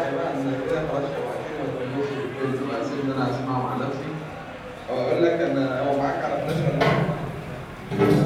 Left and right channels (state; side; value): identical; both; correlation 1.00